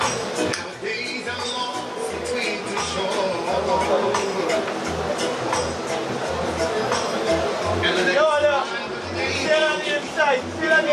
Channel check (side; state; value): both; identical; correlation 1.00